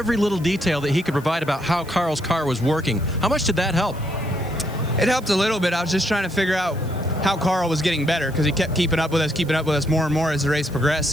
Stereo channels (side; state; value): right; noise; hiss, 22 dB below the sound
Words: little detail that he could provide about how Carl's car was working. How much did that help? It helped a little bit. I was just trying to figure out how Carl was getting better, because he kept keeping up with us more and more as the race progressed